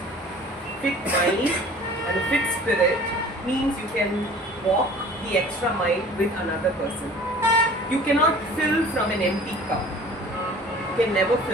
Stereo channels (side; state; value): both; normal; correlation 0.46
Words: fit mind, and a fit spirit means you can walk the extra mile with another person. You cannot fill from an empty cup. You can never